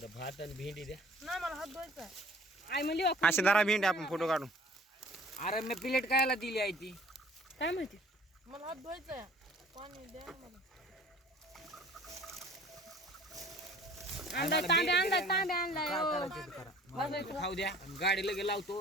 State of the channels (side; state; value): both; normal; correlation 0.51